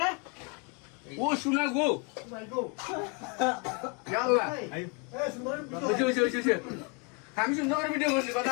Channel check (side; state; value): right; quieter; 32.2 dB